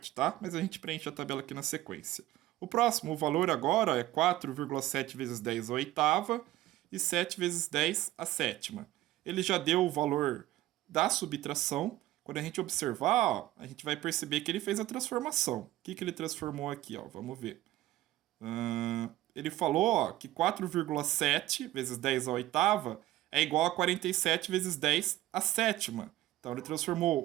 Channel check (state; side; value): quieter; left; 15.6 dB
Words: tá? Mas a gente preenche a tabela aqui na sequência. O próximo, o valor agora é 4,7 vezes 10 a oitava e 7 vezes 10 a sétima. Ele já deu o valor da subtração. Quando a gente observar, a gente vai perceber que ele fez a transformação. O que ele transformou aqui? Vamos ver. Ele falou que 4,7 vezes 10 a oitava é igual a 47 vezes 10 a sétima. Então ele